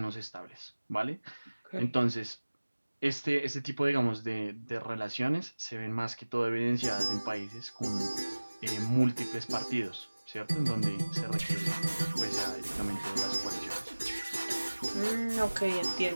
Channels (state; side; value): inverted; both; correlation -1.00